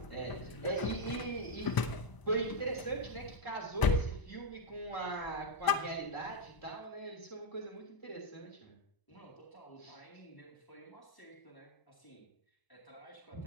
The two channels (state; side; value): late; right; 1.0 ms